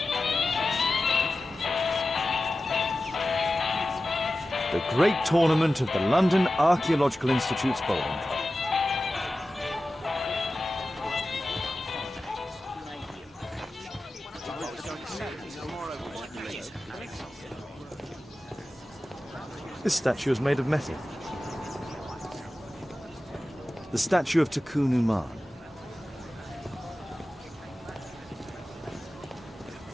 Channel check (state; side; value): normal; both; correlation 0.94